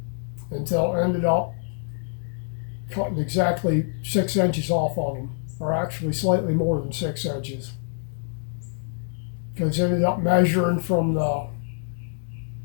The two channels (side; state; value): right; silent; digital silence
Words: until it ended up cutting exactly 6 inches off of them, or actually slightly more than 6 inches. Because it ended up measuring from the